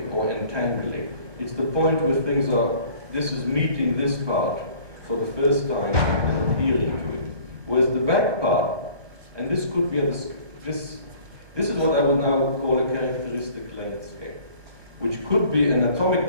or entangling. It's the point where things are, this is meeting this part for the first time and adhering to it. Whereas the back part, and this could be, this is what I would now call a characteristic length scale, which could be an atomic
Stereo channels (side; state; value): left; late; 1.2 ms